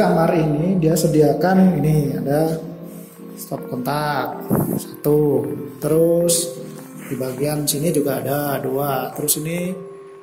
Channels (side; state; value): both; identical; correlation 1.00